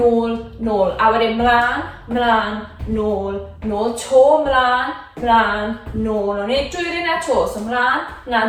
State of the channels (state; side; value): identical; both; correlation 1.00